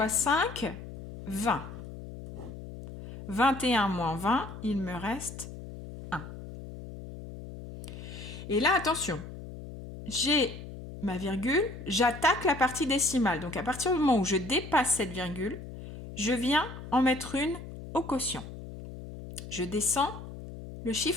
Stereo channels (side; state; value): left; noise; hum, 12 dB below the sound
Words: 5, 20. 21 moins 20, il me reste 1. Et là, attention, j'ai ma virgule, j'attaque la partie décimale. Donc à partir du moment où je dépasse cette virgule, je viens en mettre une au quotient. Je descends le